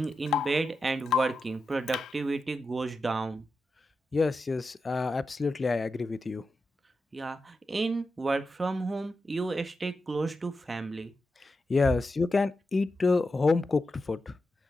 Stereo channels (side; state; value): both; normal; correlation 0.89